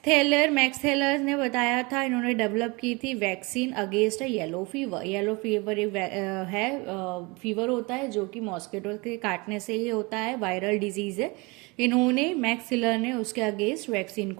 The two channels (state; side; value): quieter; left; 26.7 dB